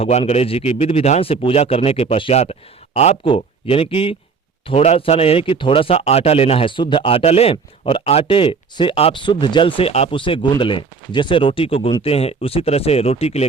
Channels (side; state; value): left; quieter; 5.1 dB